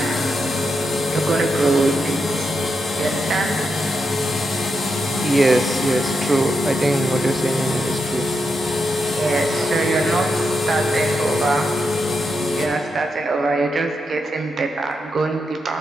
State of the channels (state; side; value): normal; both; correlation 0.85